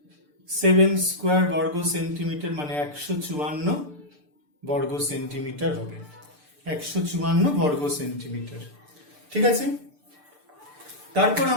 7 স্কোয়ার বর্গ সেন্টিমিটার, মানে 154 বর্গ সেন্টিমিটার হবে, 154 বর্গ সেন্টিমিটার। ঠিক আছে, তারপর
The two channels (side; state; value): left; late; 6.8 ms